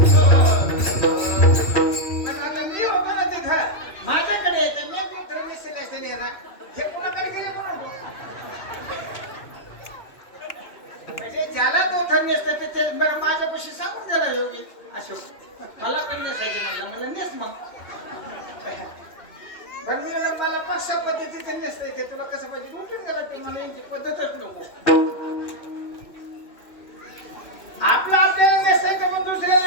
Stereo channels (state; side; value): late; right; 2.6 ms